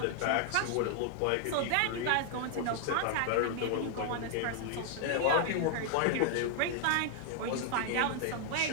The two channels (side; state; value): both; different; correlation 0.00